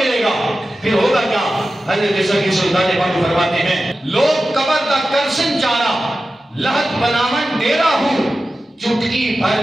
گا پھر ہوگا کیا؟ حضرت سکی سلطان باہو فرماتے ہیں لوگ قبر کا کرسن چارا لہت بنامن ڈیرا ہوں، چٹکی بھر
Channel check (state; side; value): normal; both; correlation 0.94